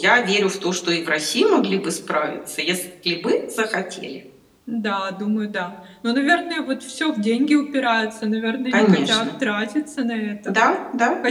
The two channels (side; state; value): both; identical; correlation 1.00